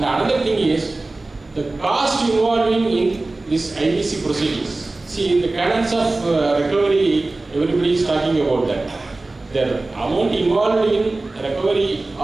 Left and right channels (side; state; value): left; quieter; 3.1 dB